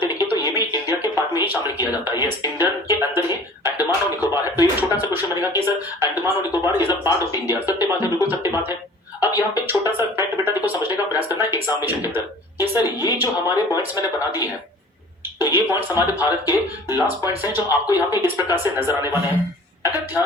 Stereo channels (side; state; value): both; normal; correlation 0.46